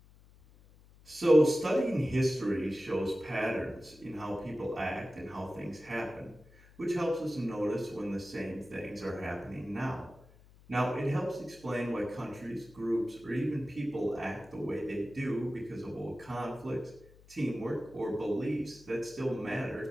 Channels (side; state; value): left; noise; hum, 24 dB below the sound